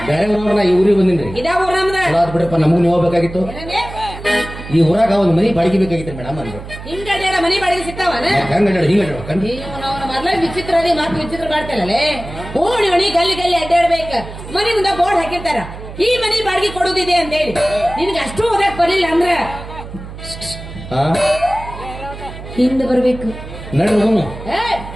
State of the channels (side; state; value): right; noise; hum, 12 dB below the sound